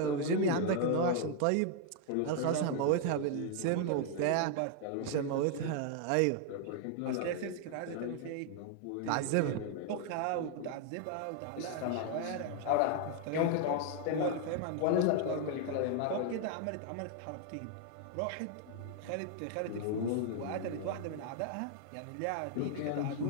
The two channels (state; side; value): different; both; correlation 0.00